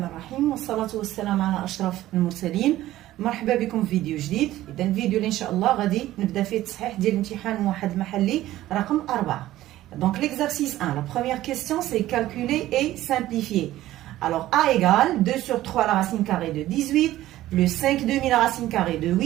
الرحيم والصلاة والسلام على أشرف المرسلين. مرحبا بكم في فيديو جديد. إذا الفيديو اللي إن شاء الله غادي نبدا فيه التصحيح ديال الامتحان موحد محلي رقم 4. Donc l'exercice 1, la première question c'est calculer et simplifier. Alors A égale 2 sur 3 la racine carrée de 18 plus 5 demi la racine carrée de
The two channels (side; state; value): left; quieter; 14.8 dB